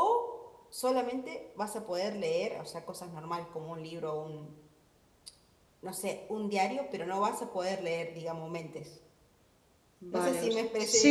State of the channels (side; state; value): both; identical; correlation 1.00